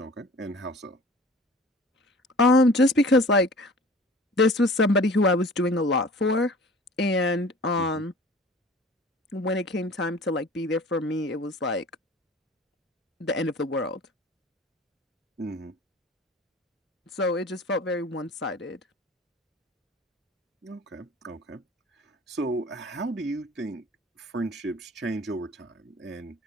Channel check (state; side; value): normal; both; correlation 0.45